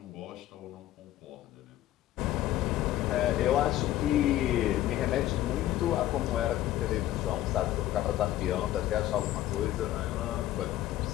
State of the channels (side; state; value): right; quieter; 13.9 dB